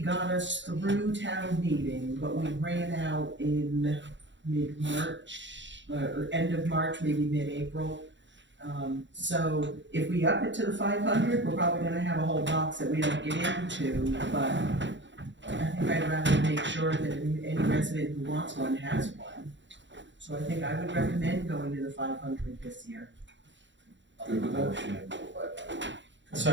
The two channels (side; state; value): left; late; 0.54 ms